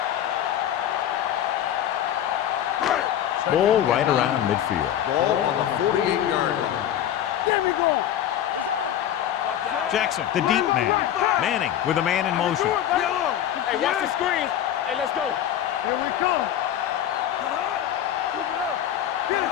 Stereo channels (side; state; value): right; quieter; 10.9 dB